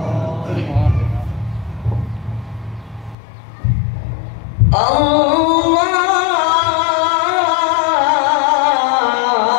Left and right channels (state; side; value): drops out; right; at 3.2 s